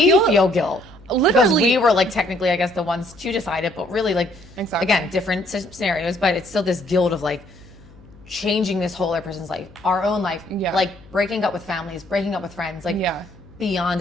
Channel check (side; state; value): left; noise; hum, 24 dB below the sound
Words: feel guilt. Literally. Because we were like technically, I guess, the ones to decide it, but really like, again, different scenarios, but it's still this guilt of like changing this whole other person's life, our own life, like breaking up with families, breaking up with friends, like beyond